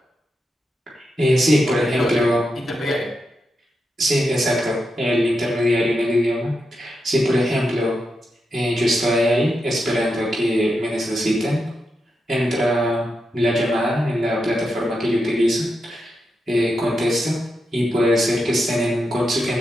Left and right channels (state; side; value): normal; both; correlation 0.86